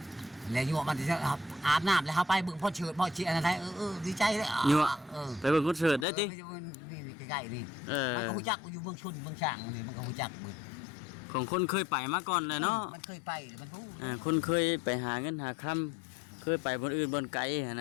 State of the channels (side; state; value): right; drops out; at 6.1 s